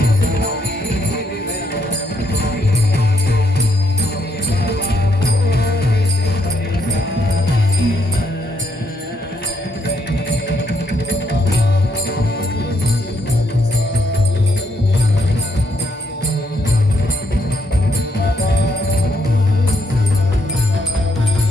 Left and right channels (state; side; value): normal; both; correlation 0.74